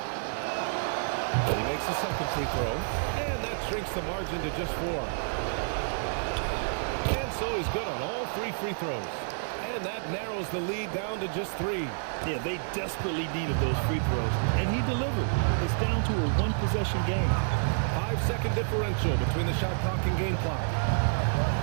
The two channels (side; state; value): left; silent; digital silence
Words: He makes the second free throw. And that shrinks the margin to just 4. And so he's good on all 3 free throws. And that narrows the lead down to just 3. Yeah, they desperately needed those free throws. And he delivered. It's down to a one-possession game. 5-second differential between the shot clock and game clock.